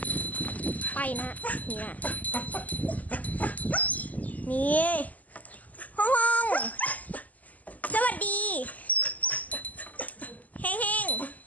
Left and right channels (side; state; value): right; late; 0.075 ms